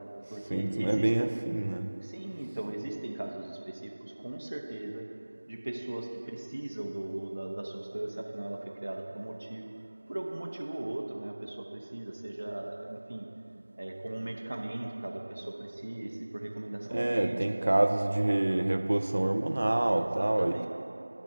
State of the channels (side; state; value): both; inverted; correlation -1.00